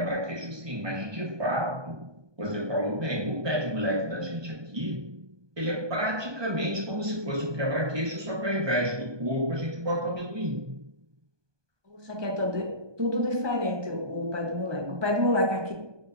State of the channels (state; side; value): late; left; 1.2 ms